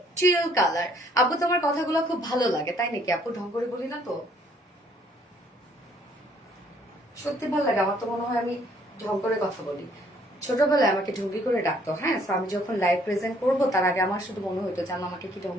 চিল কালার। আপু তোমার কথাগুলো খুব ভালো লাগে, তাই নাকি আপু? ঢং করে বলি না তো? সত্যি ভালো লাগে আমার তো, মনে হয় আমি ঢং করে কথা বলি। ছোটবেলায় আমাকে ঢঙ্গি করে ডাকতো, হ্যাঁ। তো আমি যখন লাইভ প্রেজেন্ট করবো তার আগে আমার শুধু মনে হতো যে আমাকে কি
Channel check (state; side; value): normal; both; correlation 0.63